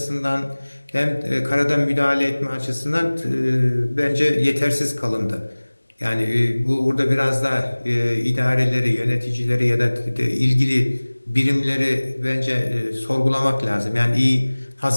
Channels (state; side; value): inverted; both; correlation -1.00